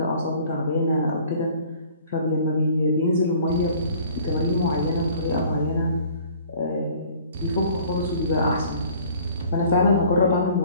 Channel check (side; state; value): both; inverted; correlation -0.52